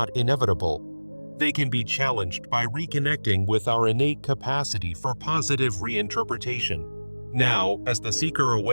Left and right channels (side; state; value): both; inverted; correlation -1.00